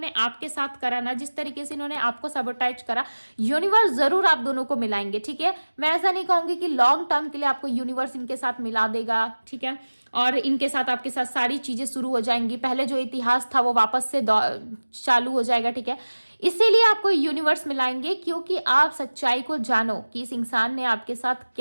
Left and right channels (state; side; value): inverted; both; correlation -1.00